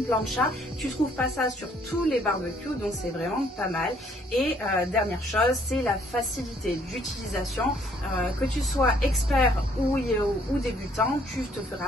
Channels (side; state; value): both; normal; correlation 0.64